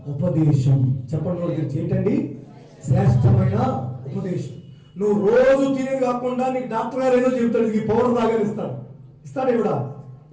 ఉపదేశం. చెప్పండి గురించి ఏంటండి? శ్రేష్టమైన ఉపదేశం. నువ్వు రోజు తినేది కాకుండా నీకు డాక్టర్ గారు ఏదో చెబుతాడు, ఈ పౌడర్ తాగని ఇస్తాడు ఇవిడా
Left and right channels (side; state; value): both; identical; correlation 1.00